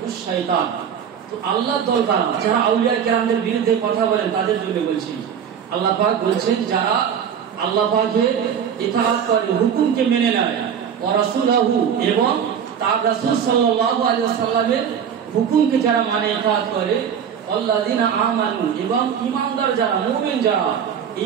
শয়তান। তো আল্লাহর দল কারা? যারা আউলিয়া কেরামদের বিরুদ্ধে কথা বলেন, তাদের জন্য বলছি। আল্লাহ পাক বলছেন যারা আল্লাহ পাকের ইতাআত করে, হুকুমকে মেনে নেয়, ওয়া রাসূলহু এবং তার রাসূল সাল্লাল্লাহু আলাইহি ওয়াসাল্লামের হুকুমকে যারা মানে ইতাআত করে, আল্লাযিনা আমানু এবং ঈমানদার যারা, মুমিন যারা,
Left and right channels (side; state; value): left; quieter; 8.0 dB